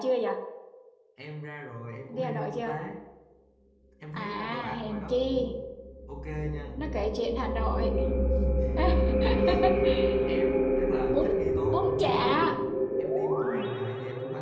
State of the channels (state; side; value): identical; both; correlation 1.00